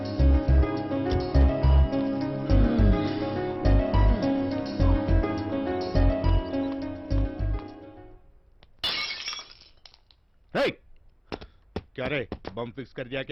क्या रे बम फिक्स कर दिया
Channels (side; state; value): both; identical; correlation 1.00